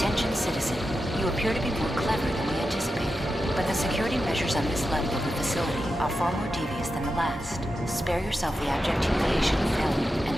citizen. You appear to be more clever than we anticipated, but the security measures on this level of the facility are far more devious than the last. Spare yourself the abject humiliation of failure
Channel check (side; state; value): both; normal; correlation 0.89